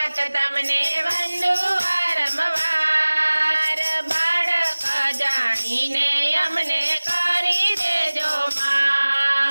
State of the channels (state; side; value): inverted; both; correlation -1.00